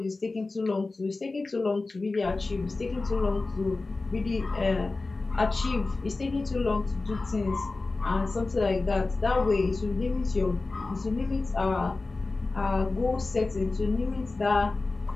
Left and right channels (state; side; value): quieter; right; 3.5 dB